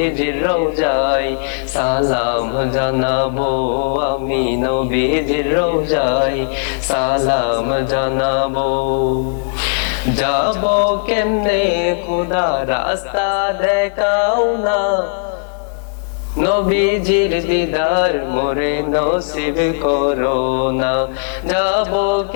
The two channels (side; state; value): right; silent; digital silence